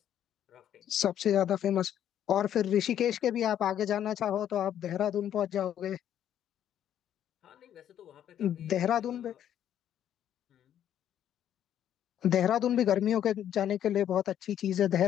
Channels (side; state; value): right; quieter; 10.4 dB